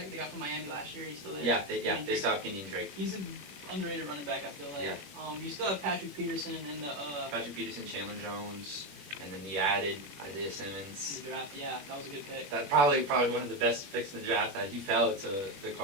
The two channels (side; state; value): left; late; 21 ms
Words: They got from Miami last year. He's still there. They still have Kenyon Drake. He's an underrated running back, I feel like. Yeah. You still have Patrick Peterson and the Patrick Peterson, Chandler Jones, and then you added Isaiah Simmons. The draft. Yeah, that was a good pick. That probably one of the best picks in the draft. That he fell to the